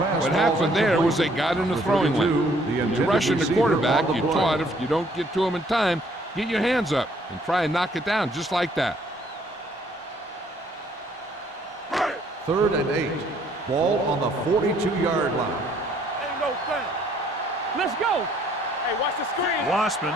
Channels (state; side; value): normal; both; correlation 0.63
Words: happened there was they got in the throwing lane. You're rushing the quarterback, you taught if you don't get to him in time, get your hands up and try and knock it down just like that. Third and 8. Ball on the 42-yard line. Ain't no thing. Let's go. Hey, watch the screen. Wassman